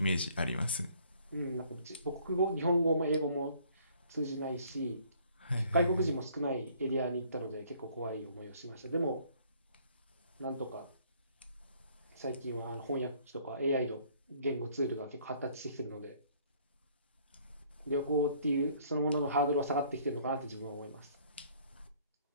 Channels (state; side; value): inverted; both; correlation -0.60